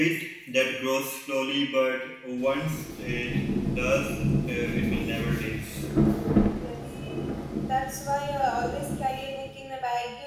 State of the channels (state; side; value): identical; both; correlation 1.00